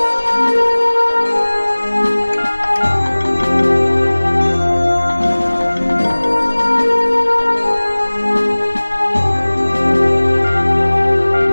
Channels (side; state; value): both; inverted; correlation -1.00